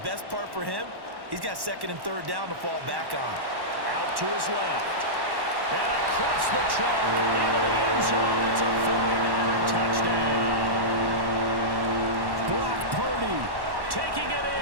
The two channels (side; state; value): left; late; 1.1 ms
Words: best part for him, he's got 2nd and 3rd down to fall back on. Out to his left. And across the chalk into the end zone. It's a 49er touchdown. Brock Purdy taking it